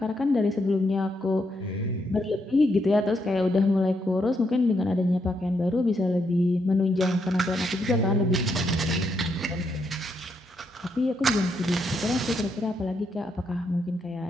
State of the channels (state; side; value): normal; both; correlation 0.78